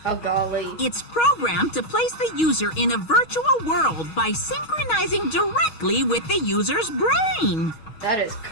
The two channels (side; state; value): right; late; 6.3 ms